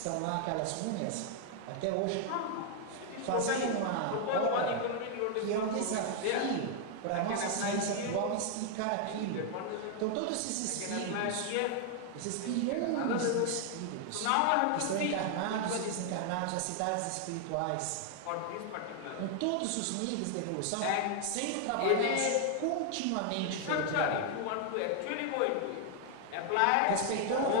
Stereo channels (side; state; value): both; different; correlation 0.00